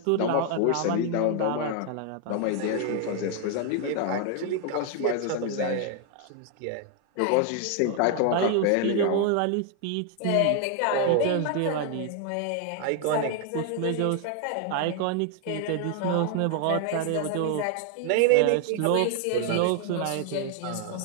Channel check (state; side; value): different; both; correlation 0.00